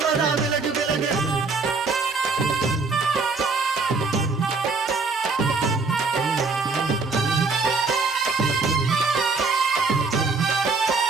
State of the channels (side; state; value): left; quieter; 4.1 dB